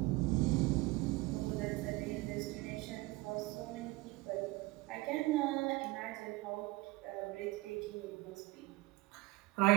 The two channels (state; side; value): quieter; left; 21.5 dB